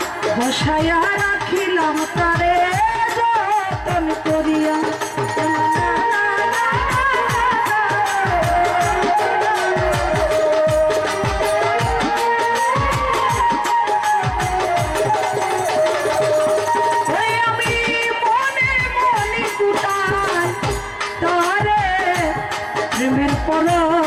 বসায়া রাখিলাম তারে যতন করিয়া। আমি মনে মনে কুটাই তারে প্রেমের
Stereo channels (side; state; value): both; identical; correlation 1.00